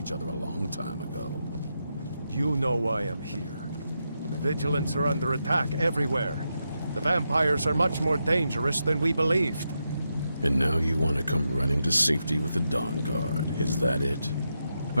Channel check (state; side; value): inverted; both; correlation -0.86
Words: other a long time ago. You know why I'm here. The Vigilants are under attack everywhere. The vampires are much more dangerous than we believed. And now you want to come running to safety with the Dawnguard, is that it?